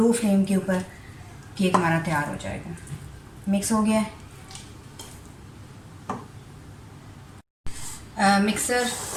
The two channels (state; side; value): identical; both; correlation 1.00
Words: फ्लेम के ऊपर केक हमारा तैयार हो जाएगा। मिक्स हो गया है। मिक्सर